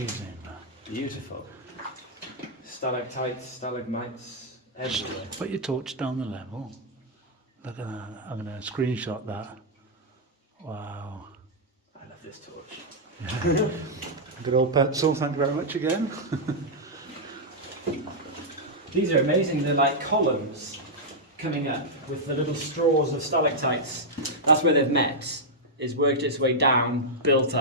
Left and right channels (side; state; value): both; normal; correlation -0.06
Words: Beautiful. Stalactites, stalagmites, everywhere. Put your torch down the level. Look at that. I'm going to screenshot that. Wow. I love this torch. Good old pencil. Thank you very much again. These are amazing. They're like columns coming up with the little straws of stalactites. That's where they've met. It's worked its way down, built